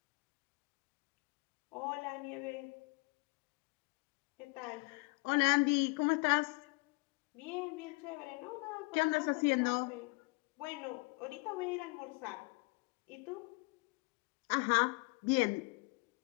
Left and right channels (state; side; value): quieter; right; 28.1 dB